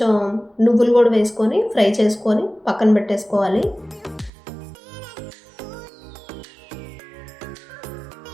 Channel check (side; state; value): left; drops out; at 4.3 s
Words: నువ్వులు కూడా వేసుకొని ఫ్రై చేసుకొని పక్కన పెట్టేసుకోవాలి.